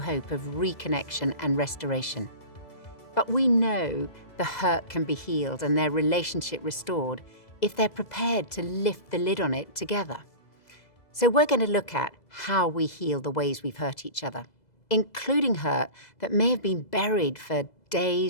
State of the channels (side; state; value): right; late; 2.0 ms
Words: of reconnection and restoration. But we know the hurt can be healed and their relationship restored if they're prepared to lift the lid on it together. So we're going to look at how we heal the ways we've hurt each other, including hurt that may have been buried for